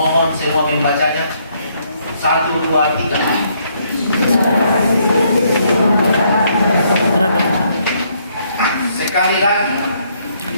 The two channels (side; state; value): both; inverted; correlation -0.70